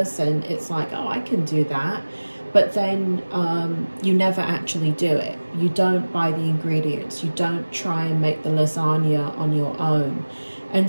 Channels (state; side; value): inverted; both; correlation -1.00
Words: and it's like, oh, I can do that. But then you never actually do it. You don't buy the ingredients. You don't try and make the lasagna on your own.